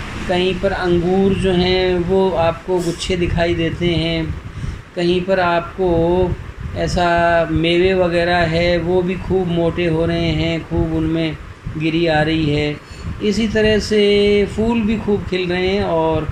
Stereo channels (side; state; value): both; identical; correlation 1.00